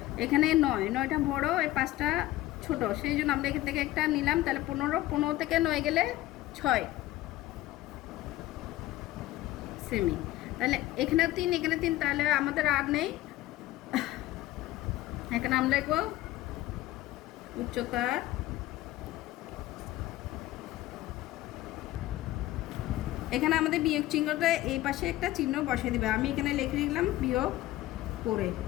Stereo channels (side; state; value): right; quieter; 16.1 dB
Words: এখানে 9টা বড়, এই 5টা ছোট, সেই জন্য আমরা এখান থেকে একটা নিলাম, তাহলে 15 থেকে 9 গেলে 6 সেমি। তাহলে এখানে 3, এখানে 3, তাহলে আমাদের আর নেই। এখানে আমরা লিখব উচ্চতার এখানে আমাদের বিয়োগ চিহ্নটা এই পাশে একটা চিহ্ন বসিয়ে দিবে। আমি এখানে লিখে দিলাম বিয়োগ করে